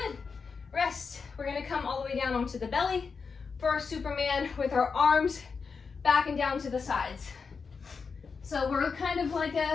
Rest. We're gonna come all the way down onto the belly for our Superman with our arms back and down to the sides. So we're kind of like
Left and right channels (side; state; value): right; quieter; 5.3 dB